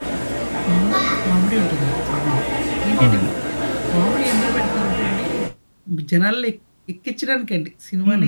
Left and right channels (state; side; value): inverted; both; correlation -1.00